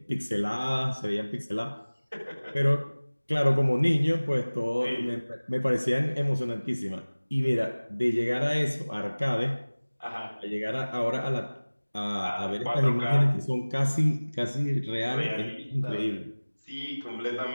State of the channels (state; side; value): inverted; both; correlation -1.00